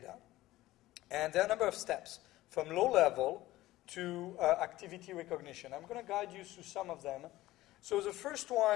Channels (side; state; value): right; quieter; 16.6 dB